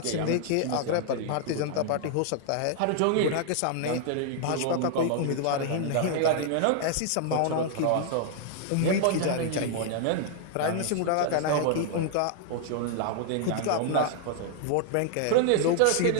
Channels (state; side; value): different; both; correlation 0.00